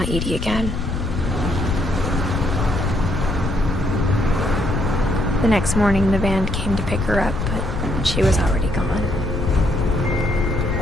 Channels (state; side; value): noise; left; rumble, 3 dB below the sound